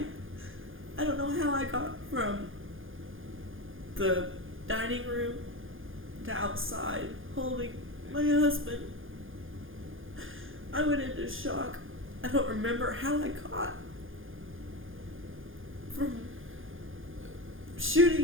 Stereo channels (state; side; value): late; left; 0.59 ms